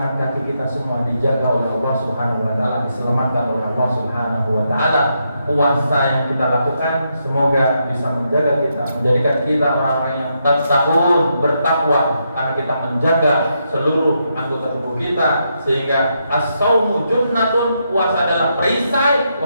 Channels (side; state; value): both; inverted; correlation -0.81